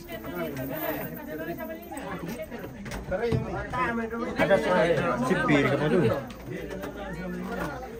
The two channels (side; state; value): both; identical; correlation 1.00